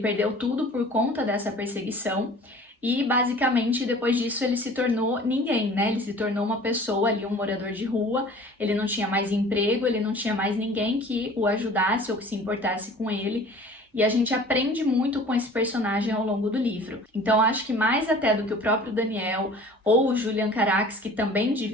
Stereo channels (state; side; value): normal; both; correlation 0.46